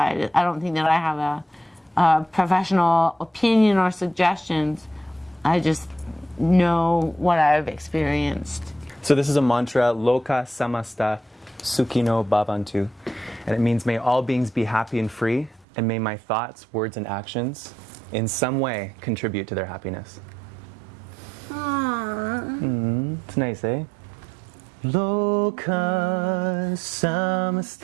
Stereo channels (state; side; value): drops out; left; at 15.7 s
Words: I don't think that I have a professional opinion or suggestions. I just know what I've experienced. So this is a mantra, Loka Samasta Sukhino Bhavantu. And it means, may all beings be happy and free, and may my thoughts, words, and actions in some way contribute to their happiness. It's nice, eh? Loka